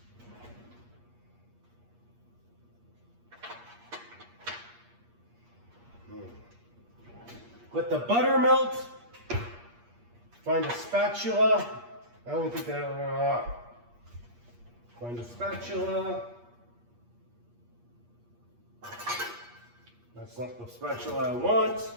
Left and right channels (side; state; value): left; late; 8.4 ms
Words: Let the butter melt. Find a spatula. I don't think that. Find a spatula. That's not the spatula I want.